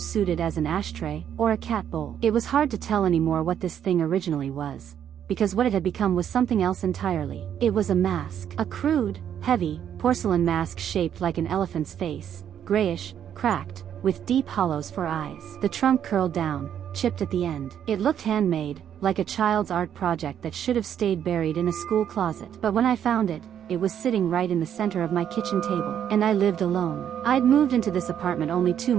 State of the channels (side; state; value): left; quieter; 9.4 dB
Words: as an ashtray, or a cat bowl. It was hard to tell anymore what this thing originally was, because what it had become was something else entirely. It was a mask. A crude, heavy, porcelain mask shaped like an elephant's face, grayish, cracked, with deep hollows for eyes. The trunk curled down, chipped at the end. It looked handmade, like a child's art project that should have stayed buried in a school closet. But when I found it, it was sitting right in the center of my kitchen table. And I lived alone. I'd moved into this apartment only 2